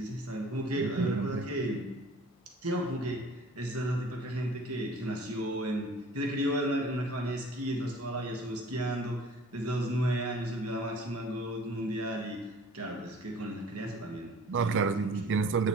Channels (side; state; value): both; normal; correlation 0.49